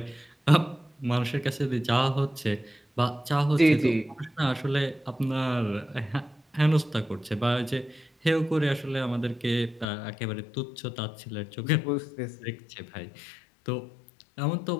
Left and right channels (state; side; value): drops out; right; at 9.9 s